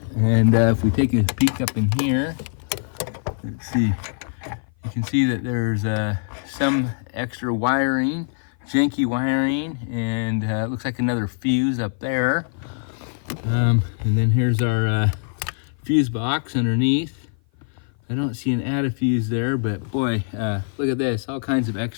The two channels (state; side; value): silent; right; 56 dB below the other